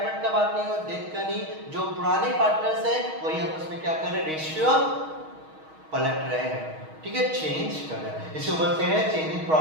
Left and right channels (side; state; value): left; late; 6.3 ms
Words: का बात नहीं हो रहा, डेथ का नहीं। जो पुराने पार्टनर्स है वही आपस में क्या कर रहे हैं, रेशियो पलट रहे हैं। ठीक है, चेंज कर रहे हैं। इसको बोलते हैं change in